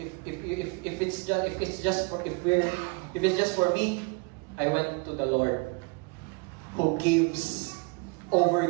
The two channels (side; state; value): left; quieter; 30.7 dB